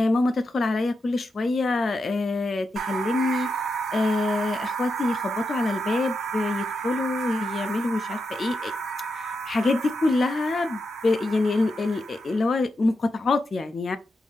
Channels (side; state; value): both; normal; correlation 0.86